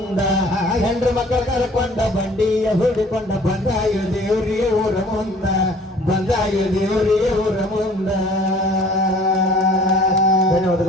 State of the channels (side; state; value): both; normal; correlation 0.52